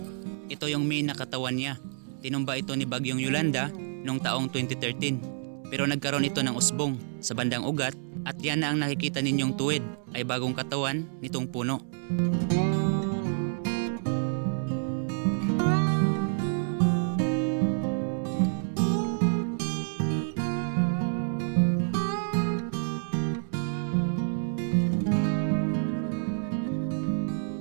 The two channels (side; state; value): left; silent; digital silence